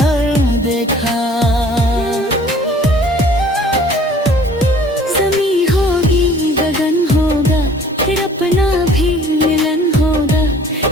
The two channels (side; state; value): both; normal; correlation 0.52